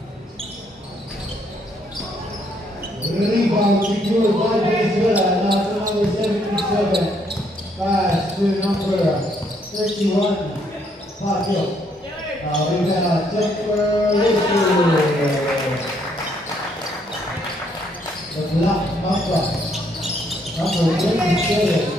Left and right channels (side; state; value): both; normal; correlation 0.70